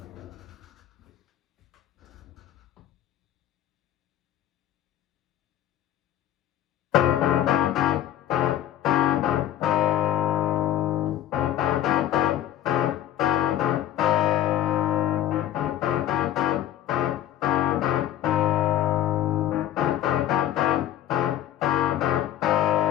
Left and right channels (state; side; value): quieter; right; 11.8 dB